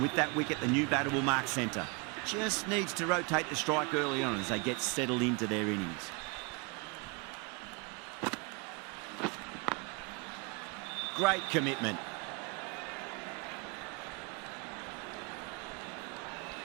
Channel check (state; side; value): quieter; left; 29.9 dB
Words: with that wicket, the new batter will mark centre. Just needs to rotate the strike early on as they get settled into their innings. Great commitment.